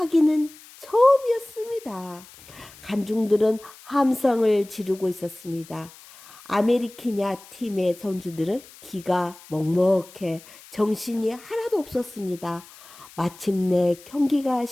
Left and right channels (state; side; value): noise; left; hiss, 21 dB below the sound